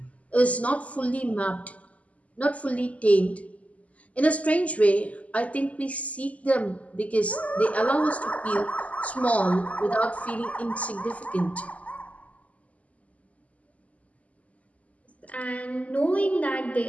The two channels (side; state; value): right; late; 0.070 ms